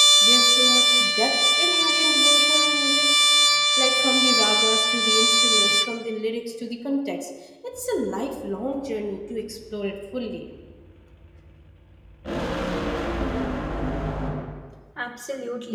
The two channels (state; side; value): identical; both; correlation 1.00